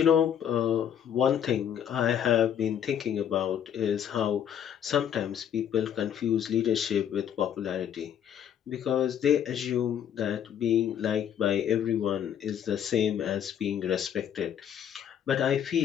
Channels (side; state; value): right; quieter; 9.3 dB